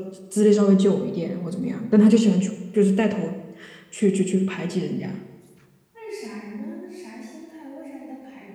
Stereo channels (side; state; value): both; identical; correlation 1.00